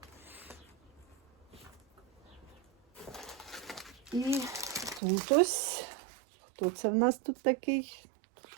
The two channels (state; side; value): drops out; left; at 5.0 s